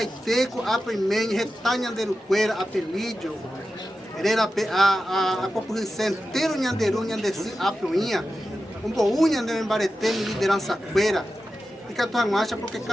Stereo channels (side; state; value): both; normal; correlation 0.92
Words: Apemen, Retá Nhanderuqueira, Apelídio, a população inteira Nhanderu, Nhandeçu, Apuinha, um boú Nhanderuqueira, liderança queira, e que a tua marcha porque